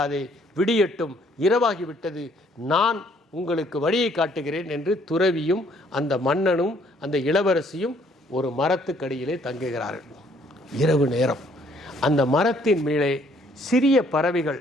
விடியட்டும், இரவாகிவிட்டது, நான் உங்களுக்கு வழியை காட்டுகிறேன் என்று துறவியும் அந்த மன்னனும் அந்த இளவரசியும் ஒரு மரத்துக்கடியிலே தங்குகிறார்கள். இரவு நேரம். அந்த மரத்தின் மேலே சிறிய பறவைகள்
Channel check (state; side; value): normal; both; correlation 0.64